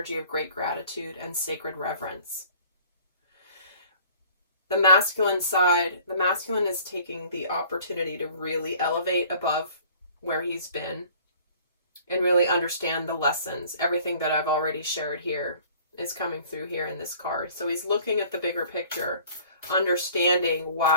of great gratitude and sacred reverence. The masculine side, the masculine is taking the opportunity to really elevate above where he's been and really understand the lessons. Everything that I've already shared here is coming through here in this card. So he's looking at the bigger picture, understanding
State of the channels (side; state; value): both; inverted; correlation -0.52